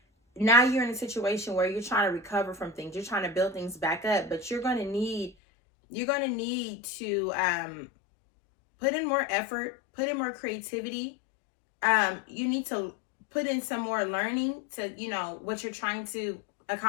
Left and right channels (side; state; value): right; drops out; at 5.4 s